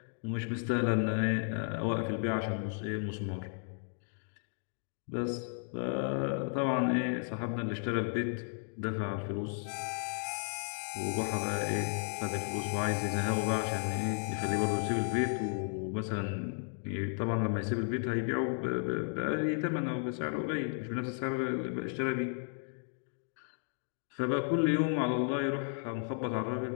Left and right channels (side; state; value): right; silent; 55 dB below the other